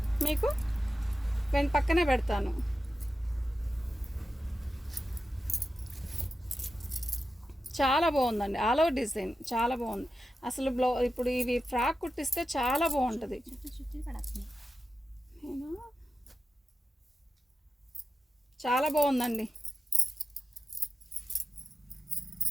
మీకు పక్కనే పెడతాను. చాలా బాగుందండి, ఆల్ ఓవర్ డిజైన్ చాలా బాగుంది అసలు. ఇప్పుడు ఇవి ఫ్రాక్ కుట్టిస్తే చాలా బాగుంటుంది. చాలా బాగుందండి.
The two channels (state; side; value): normal; both; correlation 0.92